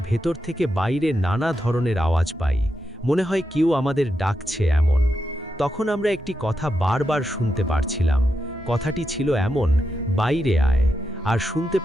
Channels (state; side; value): normal; both; correlation 0.86